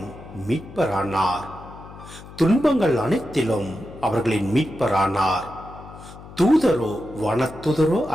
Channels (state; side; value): noise; left; hum, 17 dB below the sound